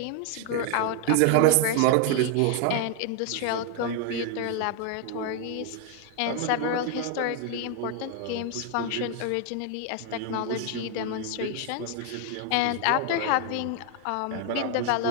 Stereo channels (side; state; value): both; different; correlation 0.00